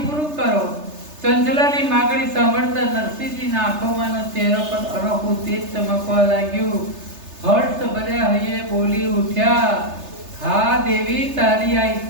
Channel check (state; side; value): late; left; 3.3 ms